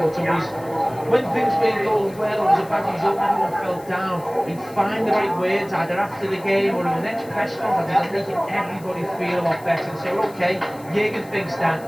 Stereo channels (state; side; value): noise; left; hiss, 23 dB below the sound